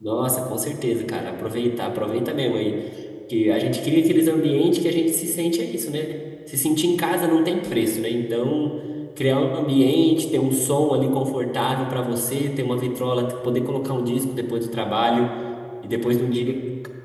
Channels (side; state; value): both; identical; correlation 1.00